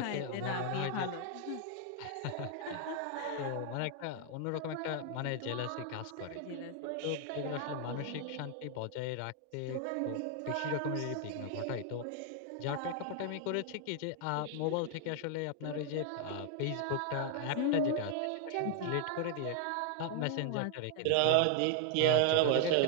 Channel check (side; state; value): both; different; correlation 0.00